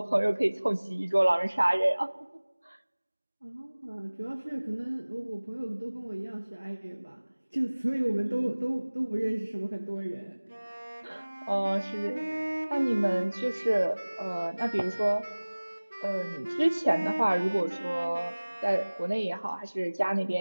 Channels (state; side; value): inverted; both; correlation -1.00